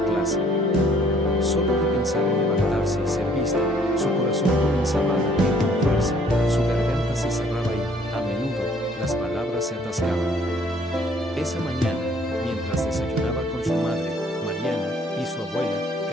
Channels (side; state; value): both; normal; correlation 0.61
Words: clase. Solo de pensar en levantarse y ser vista, su corazón comenzaba a latir con fuerza, su garganta se cerraba y, a menudo, las palabras se atascaban. Esa mañana, mientras desayunaba con su madre, Mariana, y su abuela,